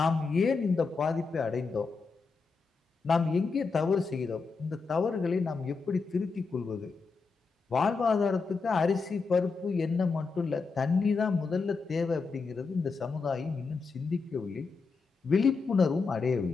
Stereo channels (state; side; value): quieter; right; 4.6 dB